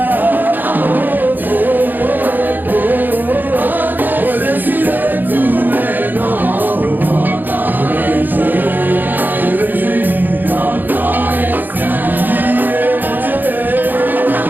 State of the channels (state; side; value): late; left; 0.088 ms